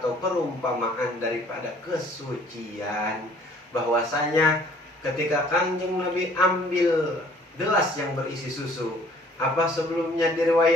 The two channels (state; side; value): normal; both; correlation 0.56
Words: perumpamaan daripada kesucian. Bahwasanya ketika Kanjeng Nabi ambil gelas yang berisi susu, apa sebelumnya di